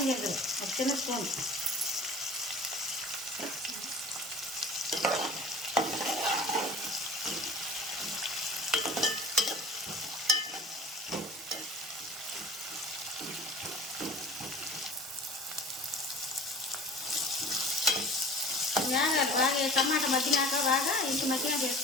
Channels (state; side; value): normal; both; correlation 0.43